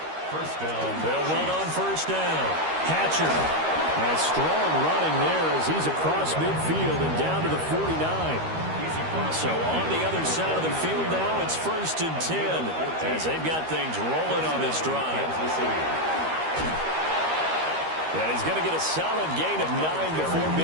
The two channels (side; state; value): left; late; 13 ms